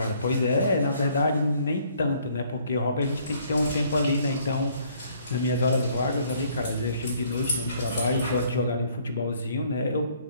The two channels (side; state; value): both; inverted; correlation -0.62